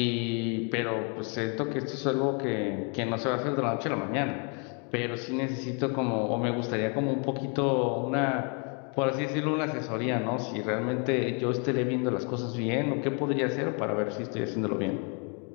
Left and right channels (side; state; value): right; quieter; 36.2 dB